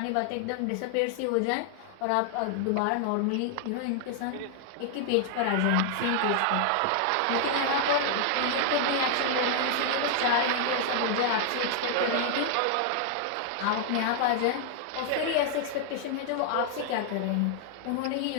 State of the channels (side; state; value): both; different; correlation 0.00